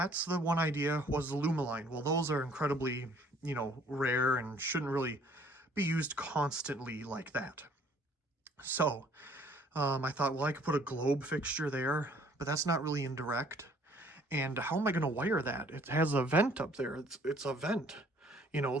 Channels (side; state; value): both; normal; correlation 0.58